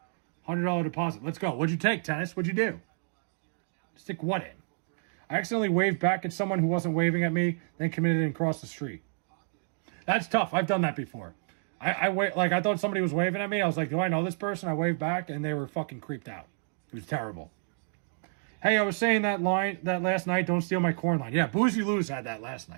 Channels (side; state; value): left; silent; digital silence